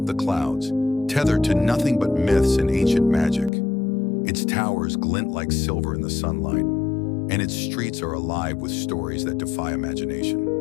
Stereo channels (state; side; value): drops out; right; at 3.5 s